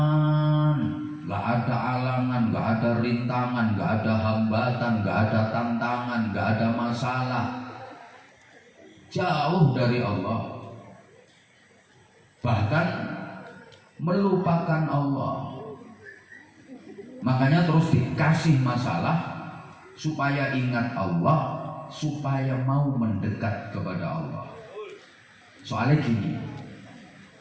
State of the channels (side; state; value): both; identical; correlation 1.00